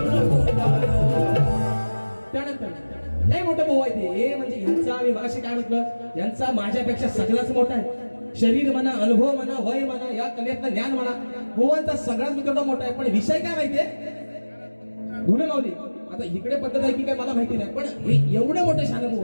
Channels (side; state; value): both; inverted; correlation -1.00